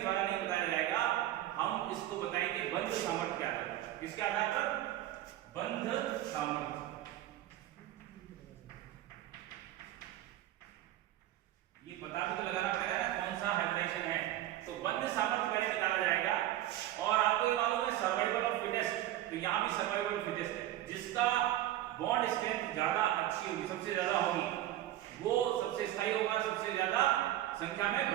नहीं बताया जाएगा, हम इसको बताएंगे बंध सामर्थ्य के आधार पर। किसके आधार पर? बंध सामर्थ्य। ये पता भी तो लगाना पड़ेगा ना कौन सा हाइब्रिडाइजेशन है। तो बंध सामर्थ्य पहले निकाला जाएगा। और आपको ये मालूम है सर्वाइवल ऑफ फिटेस्ट, तो यहाँ भी सर्वाइवल ऑफ फिटेस्ट है। जिसका बॉन्ड स्ट्रेंथ ज्यादा अच्छी होगी, सबसे ज्यादा होगी, वो सबसे स्थायी होगा, सबसे ज्यादा संख्या में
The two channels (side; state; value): left; quieter; 13.7 dB